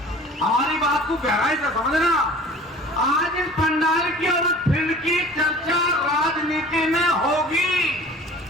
हमारी बात को गहराई से समझना आज इस पंडाल की और इस फील्ड की चर्चा राजनीति में होगी।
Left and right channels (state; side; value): normal; both; correlation 0.45